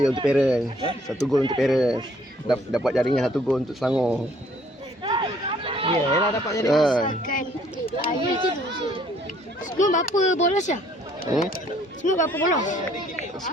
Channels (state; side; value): normal; both; correlation 0.62